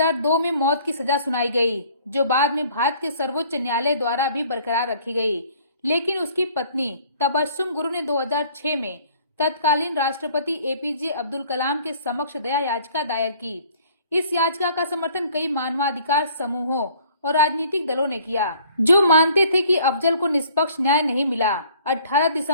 में मौत की सजा सुनाई गई, जो बाद में भारत के सर्वोच्च न्यायालय द्वारा भी बरकरार रखी गई, लेकिन उसकी पत्नी तबस्सुम गुरु ने 2006 में तत्कालीन राष्ट्रपति APJ अब्दुल कलाम के समक्ष दया याचिका दायर की। इस याचिका का समर्थन कई मानवाधिकार समूहों और राजनीतिक दलों ने किया, जो मानते थे कि अफजल को निष्पक्ष न्याय नहीं मिला। 18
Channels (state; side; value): inverted; both; correlation -0.56